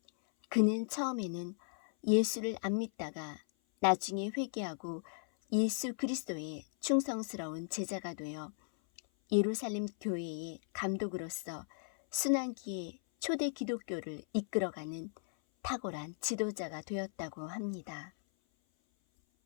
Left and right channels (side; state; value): right; silent; 53 dB below the other